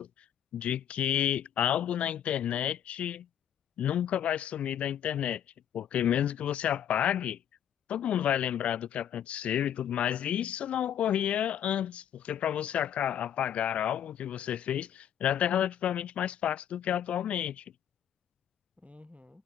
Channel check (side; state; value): right; quieter; 9.9 dB